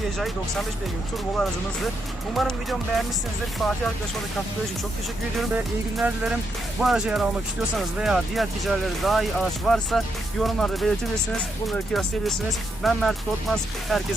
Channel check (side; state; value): both; normal; correlation 0.80